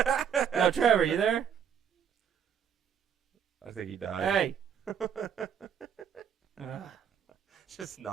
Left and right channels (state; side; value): quieter; left; 8.0 dB